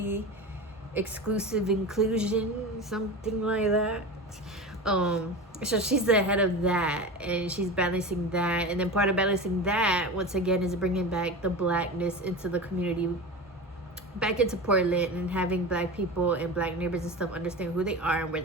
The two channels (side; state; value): both; normal; correlation 0.28